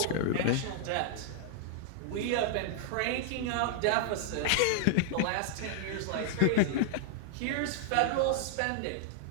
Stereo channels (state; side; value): different; both; correlation -0.01